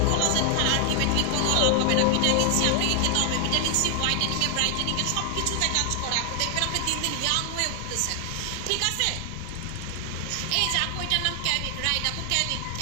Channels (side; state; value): both; different; correlation 0.00